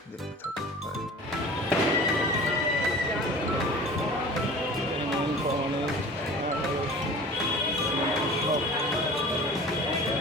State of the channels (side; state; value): both; normal; correlation 0.41